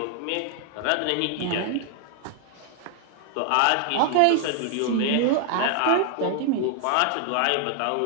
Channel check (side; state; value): both; different; correlation 0.00